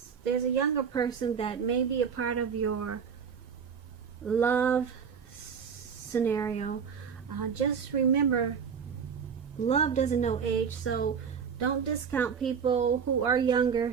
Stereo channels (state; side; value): quieter; left; 6.7 dB